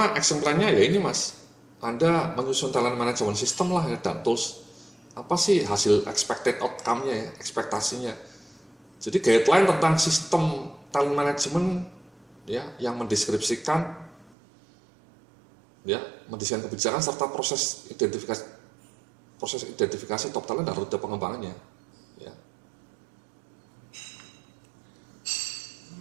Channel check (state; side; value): drops out; left; at 14.4 s